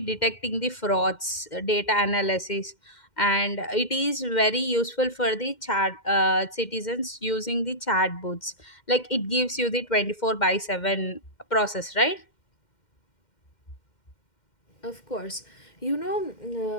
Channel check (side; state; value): right; late; 2.1 ms